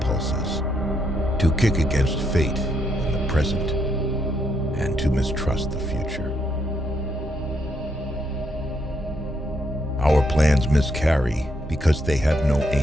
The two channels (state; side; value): normal; both; correlation 0.76